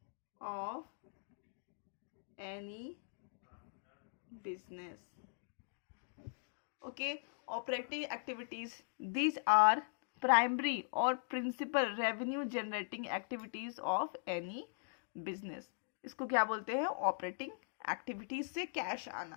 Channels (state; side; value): silent; right; digital silence